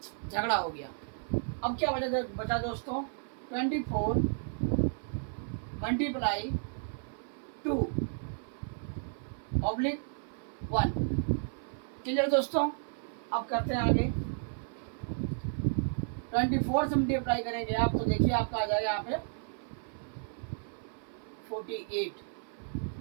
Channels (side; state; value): left; silent; 56 dB below the other